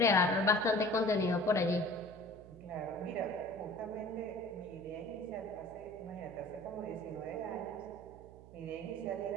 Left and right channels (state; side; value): noise; right; hum, 19 dB below the sound